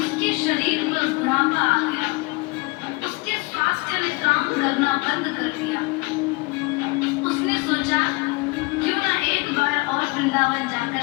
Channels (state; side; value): quieter; right; 25.8 dB